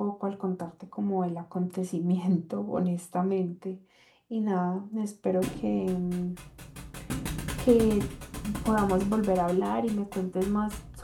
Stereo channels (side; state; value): both; identical; correlation 1.00